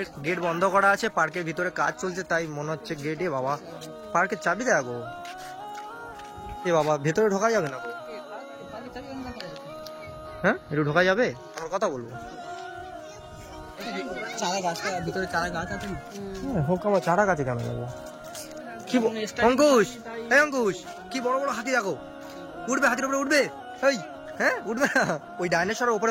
গেট বন্ধ করা আছে, পার্কের ভিতরে কাজ চলছে, তাই মনে হচ্ছে গেটে বাবা পার্কের চাবি দেখো। এ বাবা ভেতরে ঢোকা যাবে না? হ্যাঁ একটু ঢোকা যাবে? আমার কথা বলবো। চারা গাছটা ভিতরে, চারা গাছ আছে না? হোক আমার চারা গাছে কেন যাবো? কি অঙ্কুশ, এই অঙ্কুশ কি বড় বড় হাতি দেখো, উঠবে হাতির উপরে উঠবে, এই হ্যাঁ উঠবে না, ওই ডাইনোসরের উপরে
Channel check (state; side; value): identical; both; correlation 1.00